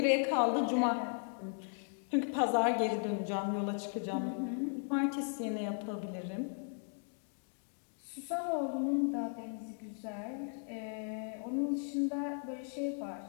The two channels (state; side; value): silent; right; 53 dB below the other